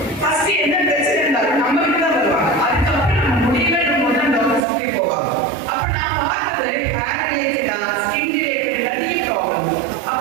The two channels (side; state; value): left; drops out; at 4.6 s